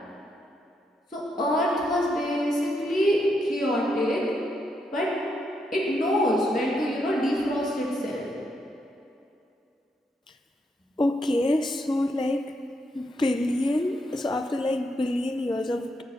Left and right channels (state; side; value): normal; both; correlation 0.79